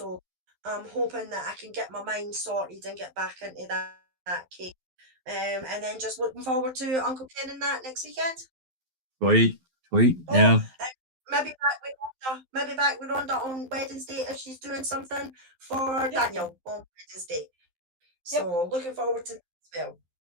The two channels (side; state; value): left; late; 12 ms